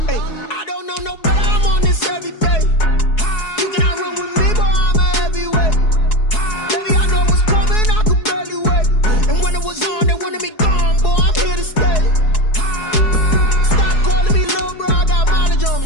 Hey, I don't know no better. I'm on this every day. You cannot run with me, boy. I'm a heavyweight. Baby, I know what's coming. I could barely wait. And when it was on, they wanted me gone, boy. I'm here to stay. Stop calling me little bro. I got mileage on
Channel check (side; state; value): right; late; 4.7 ms